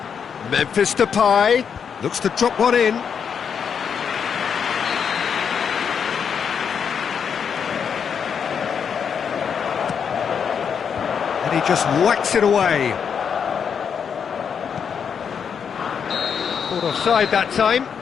Memphis Depay looks to drop one in. And he just whacks it away. Caught offside that time.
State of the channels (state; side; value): quieter; right; 7.1 dB